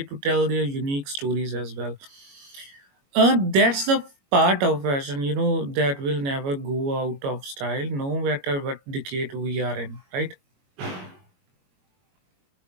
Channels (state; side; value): late; left; 22 ms